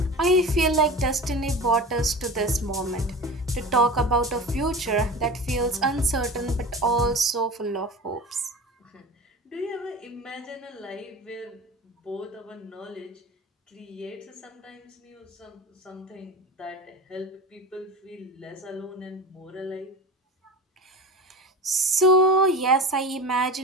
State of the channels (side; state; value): both; normal; correlation 0.33